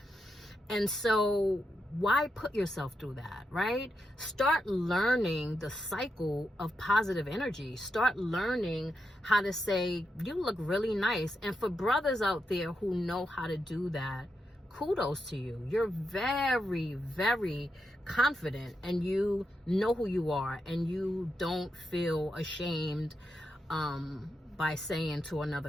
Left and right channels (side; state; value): both; normal; correlation 0.85